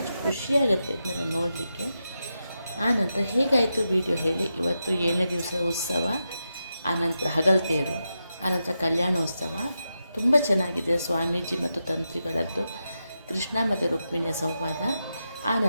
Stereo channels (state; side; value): inverted; both; correlation -0.88